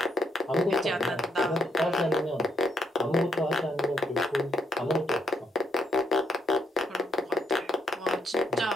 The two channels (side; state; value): both; normal; correlation 0.74